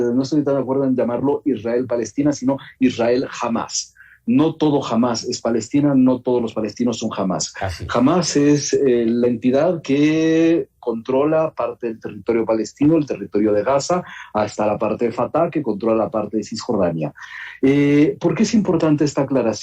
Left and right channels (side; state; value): both; identical; correlation 1.00